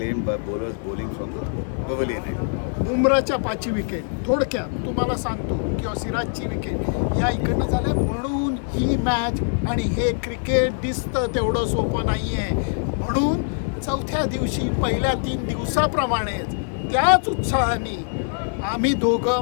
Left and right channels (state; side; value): silent; right; 63 dB below the other